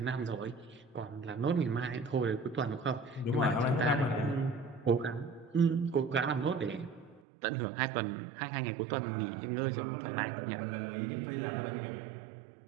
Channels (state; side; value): drops out; left; at 7.2 s